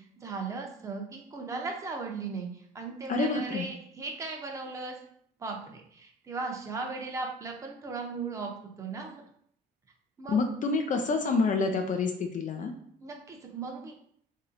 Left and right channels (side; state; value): both; normal; correlation 0.44